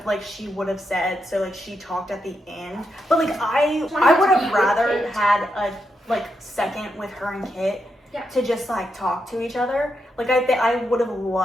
like she would have said, so like she talked at the end, but like I would have rather had a like second with her and Kit to just like talk to each other. Like I would have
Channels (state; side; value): normal; both; correlation 0.83